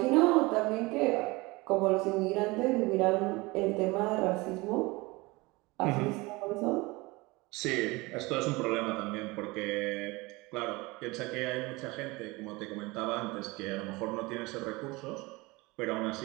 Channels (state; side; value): quieter; left; 23.3 dB